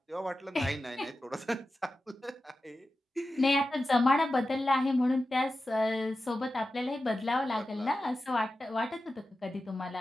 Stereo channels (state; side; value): normal; both; correlation 0.93